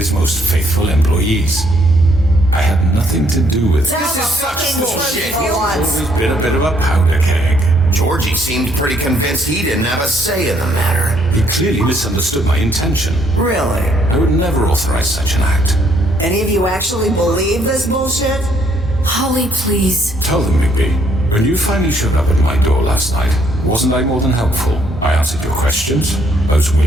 most faithful employees. I had nothing to do with it. This is such bullshit. Always been a bit of a powder keg. Georgie seemed pretty convinced he didn't have a say in the matter. He clearly misunderstood my intention. Really? I would never authorize such an act. Any of you actually believe this bullshit? Holly, please. Tell them, Bigby, when you finally showed up at my door last night, wasn't I more than helpful? I answered your questions. I was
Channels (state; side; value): normal; both; correlation 0.68